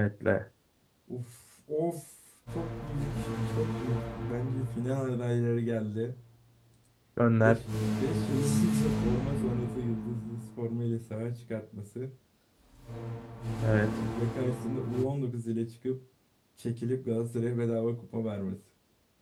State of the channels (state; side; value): identical; both; correlation 1.00